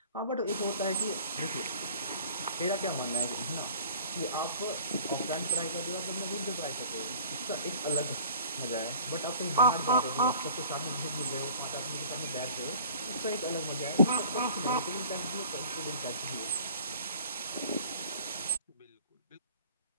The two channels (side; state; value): both; inverted; correlation -0.48